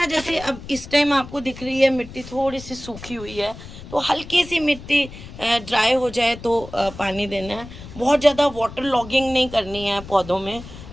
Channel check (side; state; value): left; noise; rumble, 15 dB below the sound